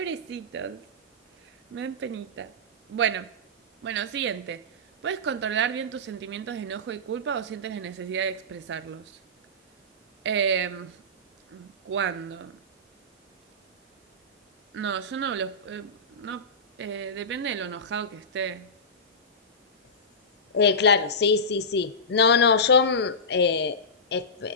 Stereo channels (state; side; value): normal; both; correlation -0.17